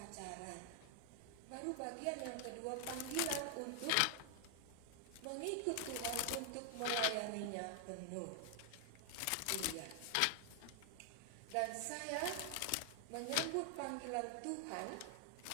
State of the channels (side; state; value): both; different; correlation 0.00